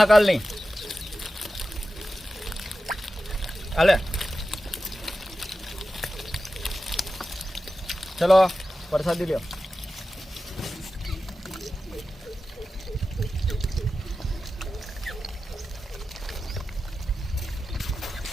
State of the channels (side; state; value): both; normal; correlation 0.93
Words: હાલે ચલો પ્રસાદી લ્યો।